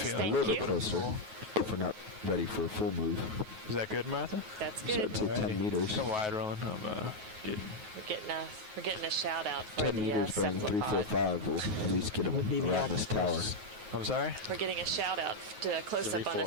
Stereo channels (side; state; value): left; late; 9.4 ms